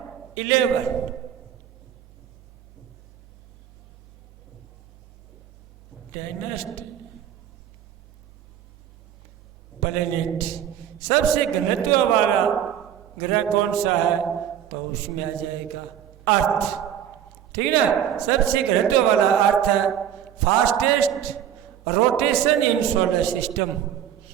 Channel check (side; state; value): left; quieter; 9.9 dB